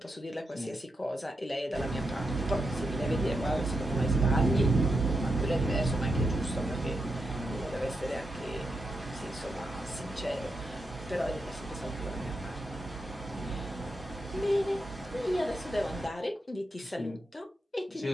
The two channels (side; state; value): both; normal; correlation 0.85